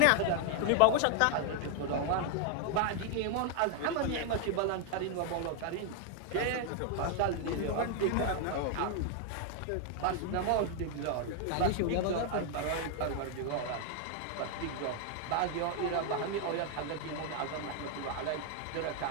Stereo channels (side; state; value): both; different; correlation 0.00